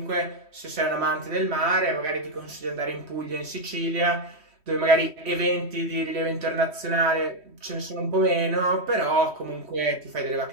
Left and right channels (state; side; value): late; left; 3.1 ms